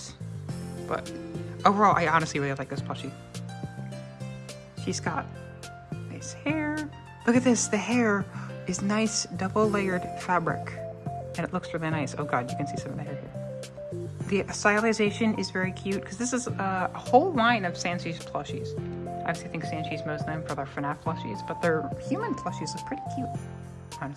But overall, I honestly really like this plushie. She's got nice hair. Look at this, the hair is nice double layered fabric. And it looks really nice. Oh god, you can see some of the hair here. The stylization is very cute because this is a whole line of Sanchi's plushies. I obviously think Sanchi's most known for their Fnaf plushies, but their human plushies look pretty cute,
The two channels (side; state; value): both; identical; correlation 1.00